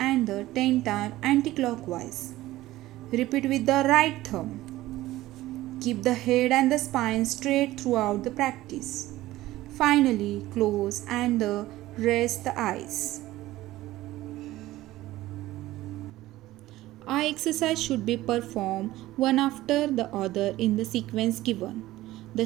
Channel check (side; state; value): left; quieter; 16.4 dB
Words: the 10 times anti-clockwise. Repeat with the right thumb. Keep the head and the spine straight throughout the practice. Finally, close and rest the eyes. Eye exercise should be performed one after the other in the sequence given. The